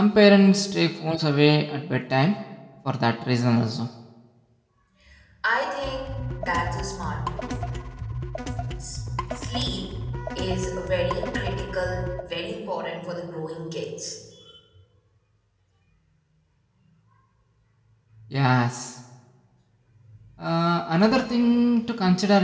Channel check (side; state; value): both; identical; correlation 1.00